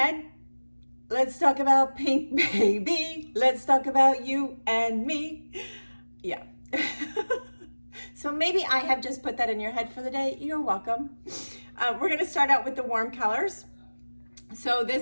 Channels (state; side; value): inverted; both; correlation -1.00